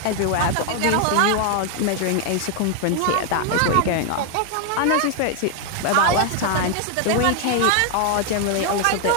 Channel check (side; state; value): both; different; correlation 0.00